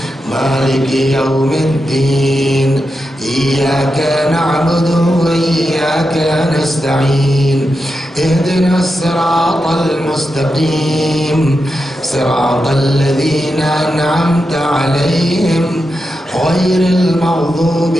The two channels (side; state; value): both; normal; correlation 0.88